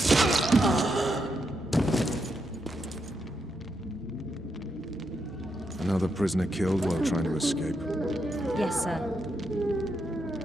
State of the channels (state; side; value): normal; both; correlation 0.83